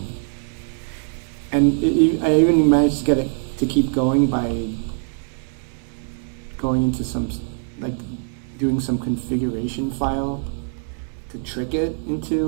And I even managed to get it to keep going by going into doing some configuration file to trick it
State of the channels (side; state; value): left; silent; 55 dB below the other